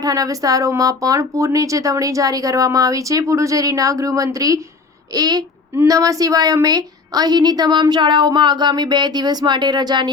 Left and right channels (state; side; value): quieter; right; 4.4 dB